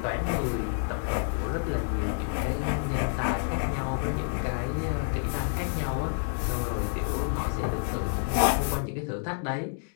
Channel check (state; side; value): silent; right; digital silence